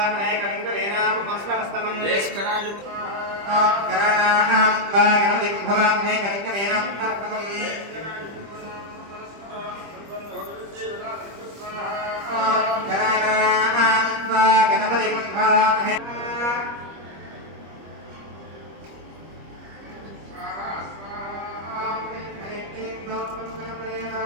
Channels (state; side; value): late; left; 25 ms